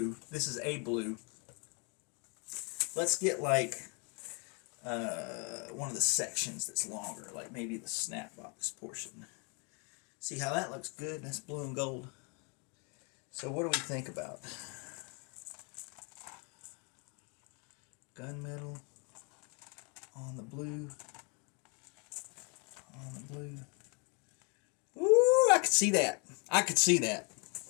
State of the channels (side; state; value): right; quieter; 34.5 dB